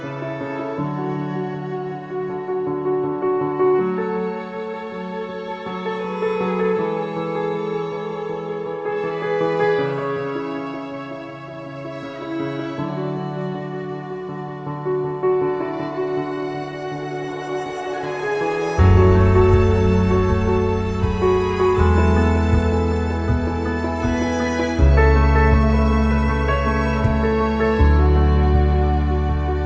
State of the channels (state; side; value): identical; both; correlation 1.00